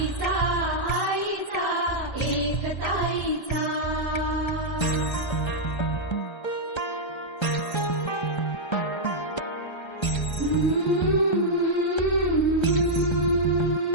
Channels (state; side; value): late; right; 1.3 ms